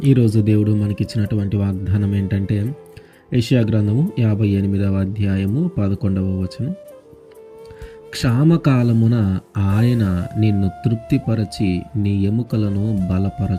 ఈరోజు దేవుడు మనకిచ్చినటువంటి వాగ్దానం ఏంటంటే యెషయా గ్రంథము 58వ అధ్యాయము 11వ వచనం. క్షామకాలమున ఆయన నిన్ను తృప్తిపరచి నీ ఎముకలను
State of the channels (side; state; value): both; identical; correlation 1.00